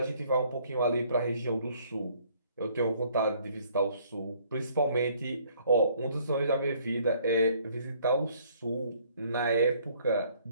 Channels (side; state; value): both; inverted; correlation -0.62